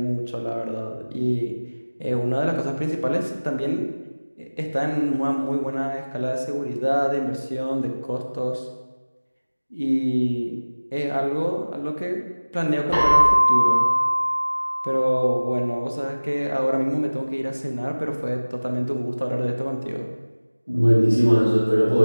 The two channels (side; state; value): both; inverted; correlation -1.00